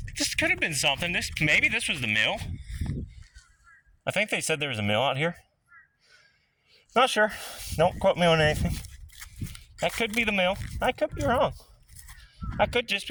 could have been something. Maybe this was the mill. I think they said there was a mill out here. Not sure. Don't quote me on anything. That could be the mill. I could be wrong. That could just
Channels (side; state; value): both; identical; correlation 1.00